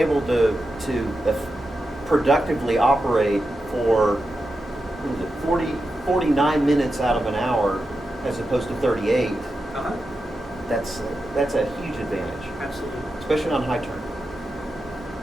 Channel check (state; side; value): normal; both; correlation 0.89